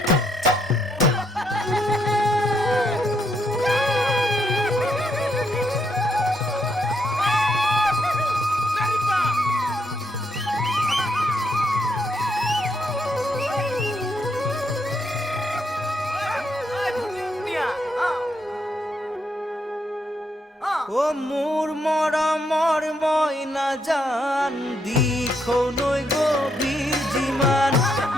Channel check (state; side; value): normal; both; correlation 0.76